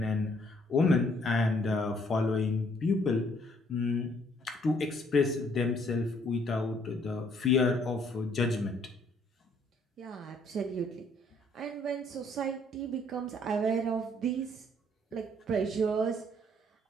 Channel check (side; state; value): both; normal; correlation 0.65